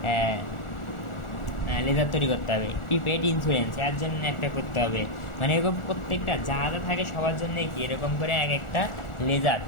লেজার তৈরি করতে হবে। প্রিপেড ইন্স্যুরেন্স, এর জন্য একটা করতে হবে। মানে এরকম প্রত্যেকটা যা যা থাকে সবার জন্য কি এরকম করে এক একটা লেজার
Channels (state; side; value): late; right; 1.4 ms